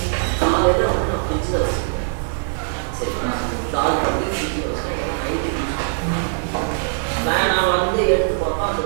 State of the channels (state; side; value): silent; left; digital silence